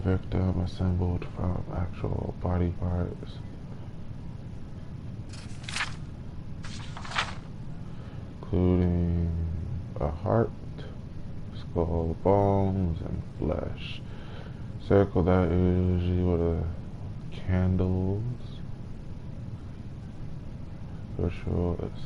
victim assembled from actual body parts, including a heart, skull, bones, and flesh. Circle that usually with a candles. Ritual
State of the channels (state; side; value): identical; both; correlation 1.00